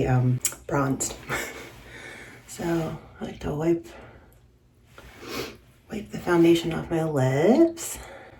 bronzed. So I like to wipe the foundation off my lips.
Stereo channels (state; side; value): identical; both; correlation 1.00